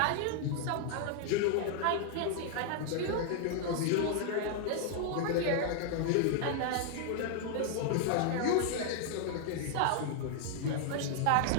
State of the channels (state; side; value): different; both; correlation -0.01